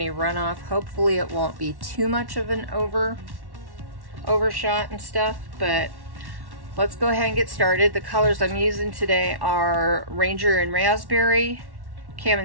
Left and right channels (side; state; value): left; late; 1.1 ms